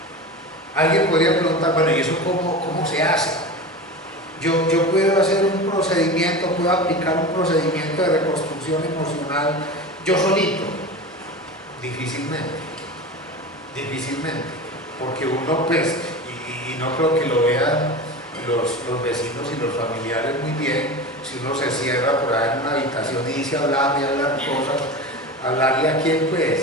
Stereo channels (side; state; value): both; normal; correlation 0.29